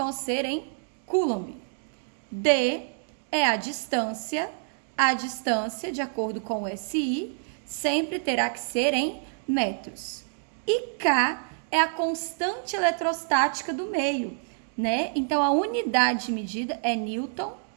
ser em Coulomb. D é a distância, de acordo com o SI, sempre terá que ser em metros. E K é a constante eletrostática do meio, Então, a unidade de medida é Newton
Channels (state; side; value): silent; left; digital silence